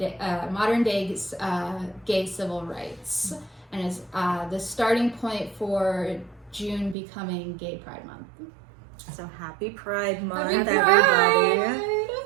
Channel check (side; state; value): left; drops out; at 7.0 s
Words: gay civil rights, and is the starting point for June becoming Gay Pride Month. So happy Pride Month, Happy everybody. Pride!